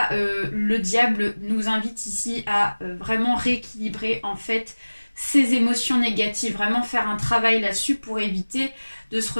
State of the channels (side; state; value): both; inverted; correlation -1.00